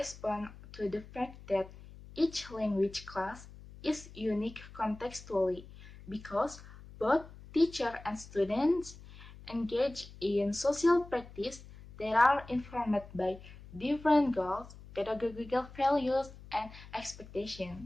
to the fact that each language class is unique contextually because both teacher and students engage in social practice that are informed by different goals, pedagogical values, and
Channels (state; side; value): noise; left; hum, 18 dB below the sound